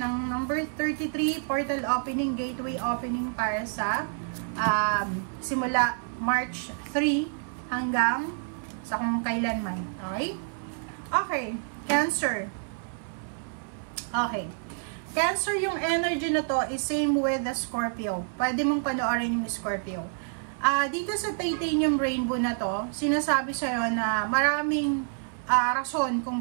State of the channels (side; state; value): left; silent; 59 dB below the other